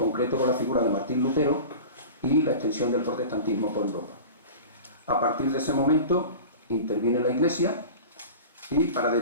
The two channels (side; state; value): both; inverted; correlation -0.35